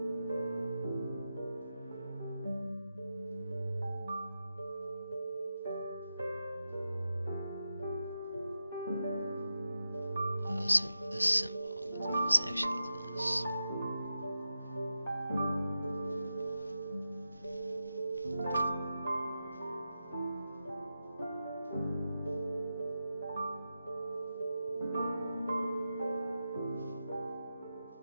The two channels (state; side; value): inverted; both; correlation -0.90